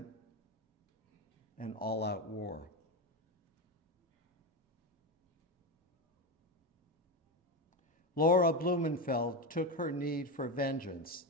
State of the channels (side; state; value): both; normal; correlation 0.15